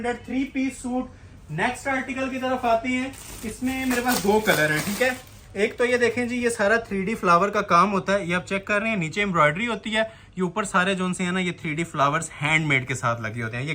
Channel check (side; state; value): both; identical; correlation 1.00